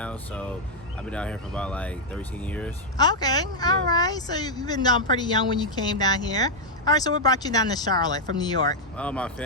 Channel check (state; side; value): normal; both; correlation -0.02